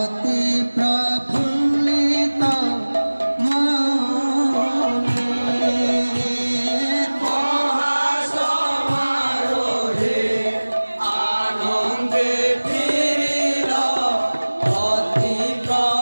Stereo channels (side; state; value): both; inverted; correlation -1.00